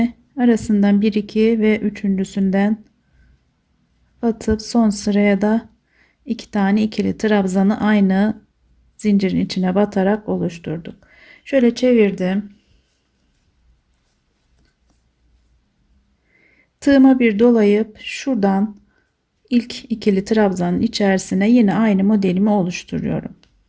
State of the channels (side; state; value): both; identical; correlation 1.00